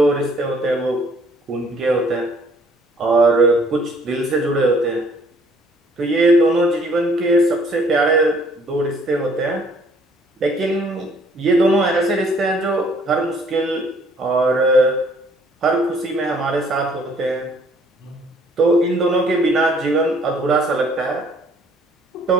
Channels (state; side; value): normal; both; correlation 0.60